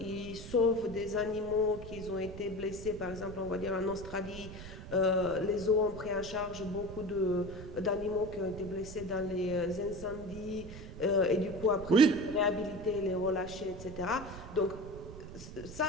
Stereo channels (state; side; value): noise; right; rumble, 12 dB below the sound